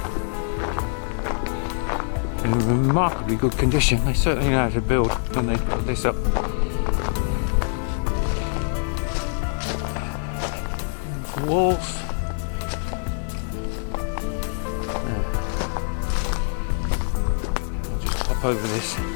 In remarkably good condition. They certainly know how to build when they put this up. Walls. Just hop over this.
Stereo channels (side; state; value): right; silent; digital silence